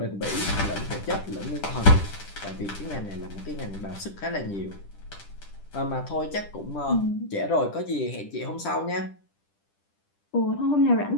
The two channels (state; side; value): late; right; 10 ms